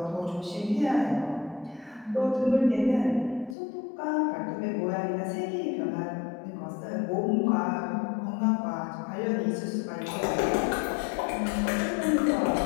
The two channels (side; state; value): right; drops out; at 3.6 s